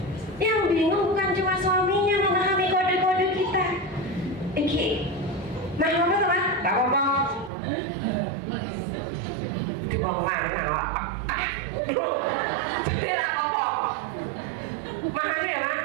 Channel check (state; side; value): drops out; left; at 7.5 s